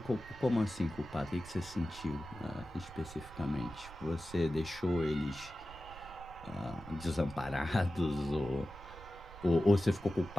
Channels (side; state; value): right; noise; rumble, 16 dB below the sound